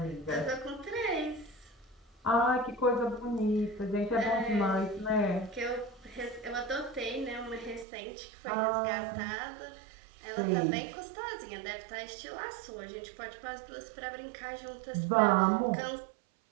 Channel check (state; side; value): drops out; left; at 7.9 s